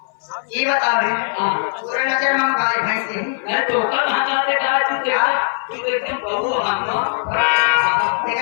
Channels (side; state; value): right; silent; 61 dB below the other